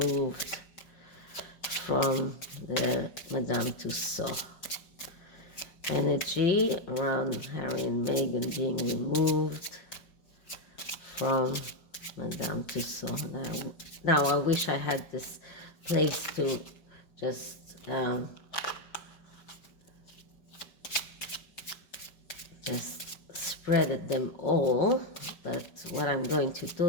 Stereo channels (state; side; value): late; right; 5.5 ms